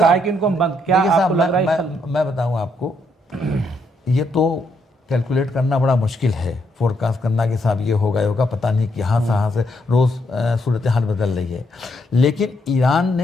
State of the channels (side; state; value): both; normal; correlation 0.75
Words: है कि इनको क्या आपको लग रहा है? मैं बताऊं आपको, ये तो कैलकुलेट करना बड़ा मुश्किल है, फोरकास्ट करना कि साहब ये होगा होगा, पता नहीं कि यहाँ से रोज़ सूरत हाल बदल रही है। लेकिन ईरान